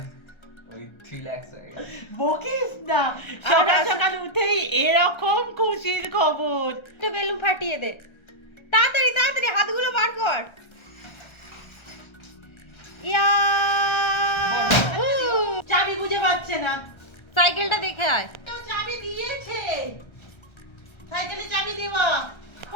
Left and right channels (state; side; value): late; right; 1.3 ms